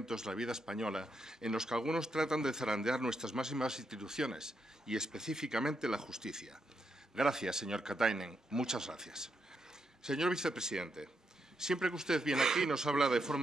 de la vida española en los que algunos tratan de zarandear nuestras máximas instituciones y específicamente la justicia. Gracias, señor Katainen. Muchas gracias. Señor vicepresidente, siempre que usted viene aquí nos habla de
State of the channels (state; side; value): normal; both; correlation 0.81